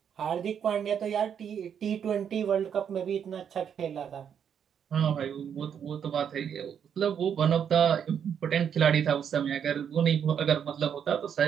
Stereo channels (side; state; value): left; quieter; 8.1 dB